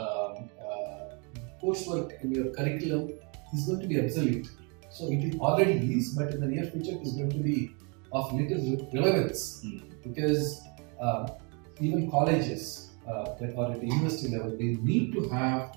coursework in your curriculum is going to be obsolete. So it already is, but in the near future it is going to be of little relevance because even colleges that are at the university level, they need to have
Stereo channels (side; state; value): left; quieter; 33.8 dB